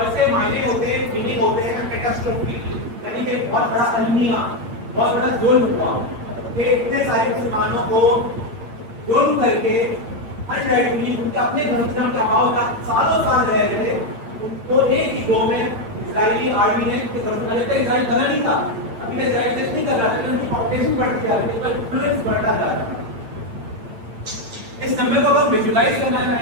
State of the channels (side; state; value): left; late; 8.7 ms